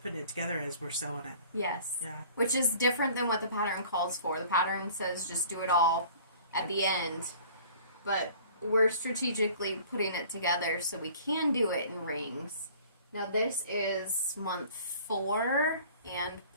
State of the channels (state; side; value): inverted; both; correlation -0.49